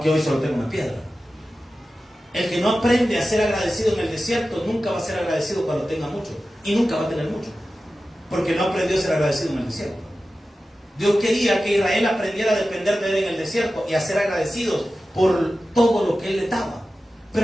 hoy solo tengo una piedra. El que no aprende a ser agradecido en el desierto nunca va a ser agradecido cuando tenga mucho. Y nunca va a tener mucho, porque no aprendió a ser agradecido en el desierto. Dios quería que Israel aprendiera a depender de Él en el desierto y a ser agradecidos por todo lo que Él le daba.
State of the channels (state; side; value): normal; both; correlation 0.94